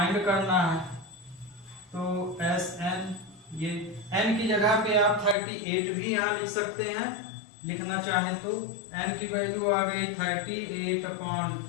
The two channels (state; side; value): drops out; right; at 5.4 s